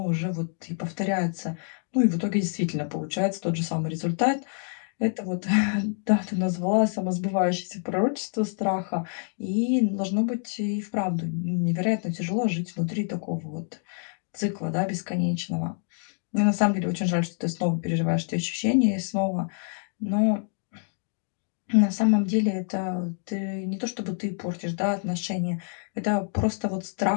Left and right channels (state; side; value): silent; right; 60 dB below the other